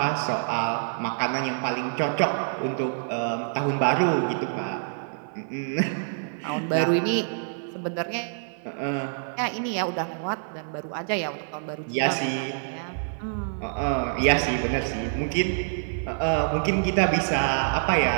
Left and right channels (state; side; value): silent; left; 56 dB below the other